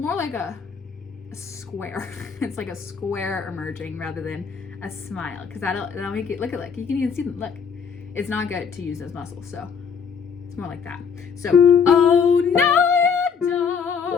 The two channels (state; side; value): quieter; right; 6.3 dB